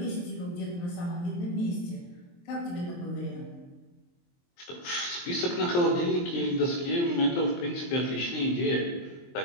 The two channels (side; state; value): right; late; 23 ms